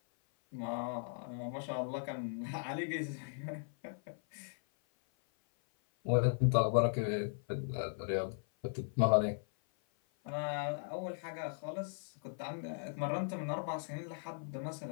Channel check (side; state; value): right; silent; 53 dB below the other